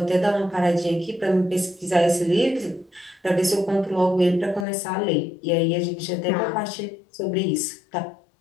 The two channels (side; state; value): right; drops out; at 4.7 s